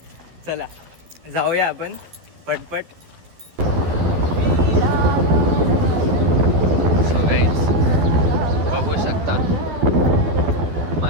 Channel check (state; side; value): late; left; 12 ms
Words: चला जाऊया आपण पटपट. बघू शकता